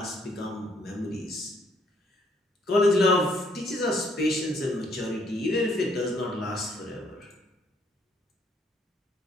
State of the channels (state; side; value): normal; both; correlation 0.67